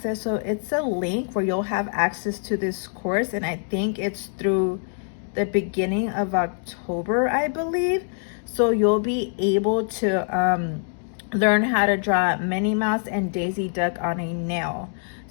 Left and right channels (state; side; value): silent; right; 62 dB below the other